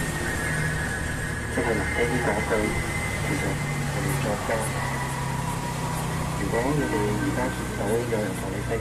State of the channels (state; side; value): identical; both; correlation 1.00